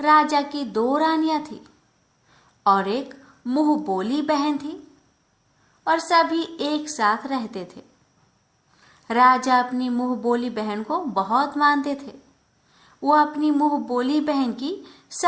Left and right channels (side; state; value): both; identical; correlation 1.00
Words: की 2 रानियां थी और एक मुंह बोली बहन थी और सभी एक साथ रहते थे। राजा अपनी मुंह बोली बहन को बहुत मानते थे। वो अपनी मुंह बोली बहन की